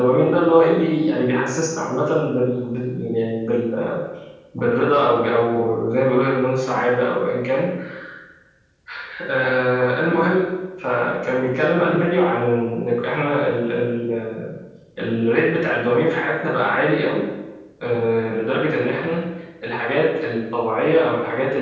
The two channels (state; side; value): identical; both; correlation 1.00